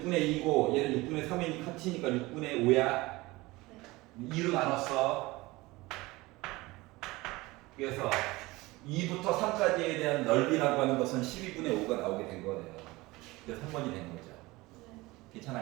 6분의 2고 얘는 6분의 3이니까 합치니까 6분의 5야. 2로 나눴어. 그래서 2부터 3까지에 대한 넓이라고 하는 것은 12분의 5가 나오게 된 거네요. 그래서 3번이 된 거죠.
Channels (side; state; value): left; quieter; 21.1 dB